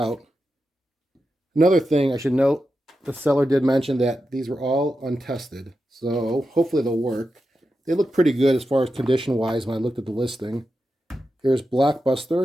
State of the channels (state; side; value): normal; both; correlation 0.89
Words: Another thing I should note, the seller did mention that these were all untested, so hopefully they'll work. They look pretty good as far as condition-wise when I looked at the listing. Here's